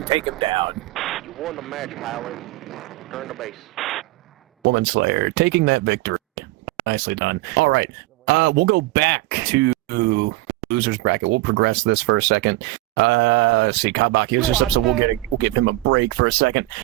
take him down. You won the match, pilot. Return to base. Woman Slayer taking that victory. Nicely done. All right. We'll go back to losers bracket. We'll progress this for a second. Let's see. Kabaki is just up, so we'll give him a break for a second.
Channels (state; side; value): quieter; left; 18.7 dB